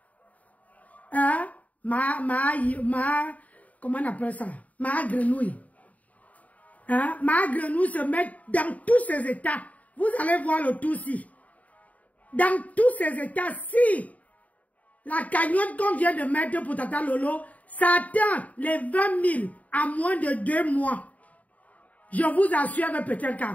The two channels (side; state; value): right; late; 0.071 ms